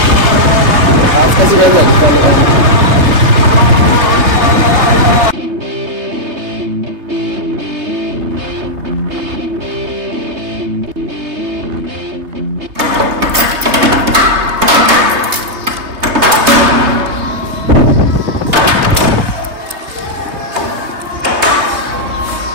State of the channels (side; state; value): left; late; 3.3 ms